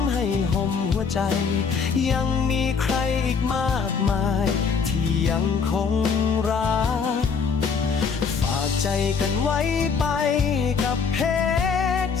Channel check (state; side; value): quieter; right; 5.7 dB